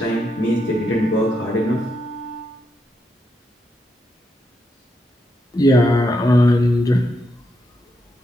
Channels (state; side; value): normal; both; correlation 0.82